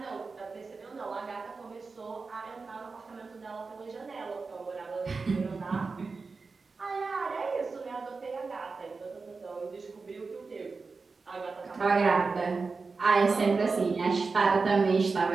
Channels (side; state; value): left; quieter; 4.3 dB